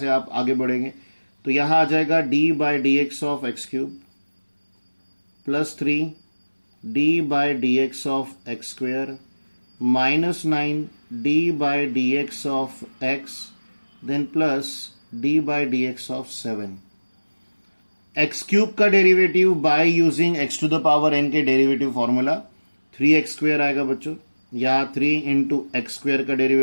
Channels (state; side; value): inverted; both; correlation -1.00